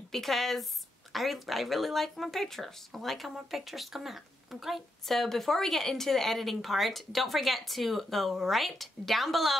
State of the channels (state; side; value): normal; both; correlation 0.82